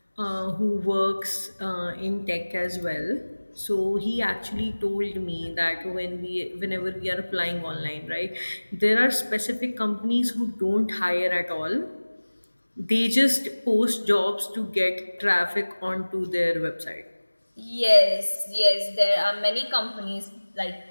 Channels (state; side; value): inverted; both; correlation -1.00